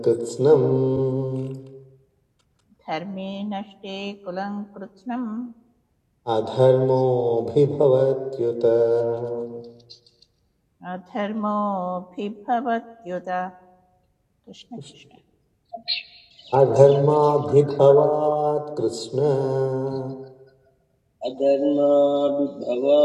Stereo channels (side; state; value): both; identical; correlation 1.00